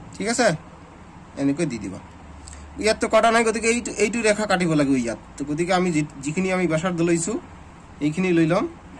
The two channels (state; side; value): identical; both; correlation 1.00